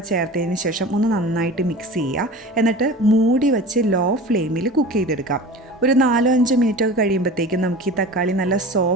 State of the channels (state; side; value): normal; both; correlation 0.36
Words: ചേർത്തതിന് ശേഷം ഒന്ന് നന്നായിട്ട് മിക്സ് ചെയ്യുക. എന്നിട്ട് മൂടി വെച്ച് ലോ ഫ്ലെയിമിൽ കുക്ക് ചെയ്തെടുക്കാം. ഒരു 4-5 മിനിറ്റൊക്കെ കഴിയുമ്പോഴത്തേക്കും നമുക്ക് ഈ തക്കാളി നല്ല